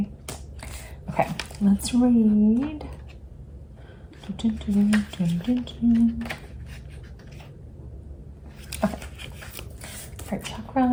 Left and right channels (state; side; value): identical; both; correlation 1.00